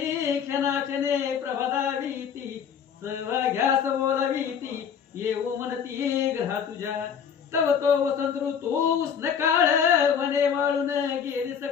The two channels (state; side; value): quieter; right; 7.6 dB